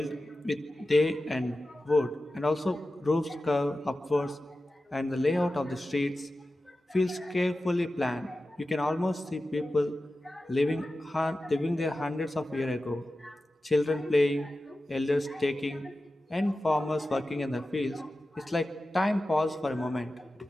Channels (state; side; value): normal; both; correlation 0.94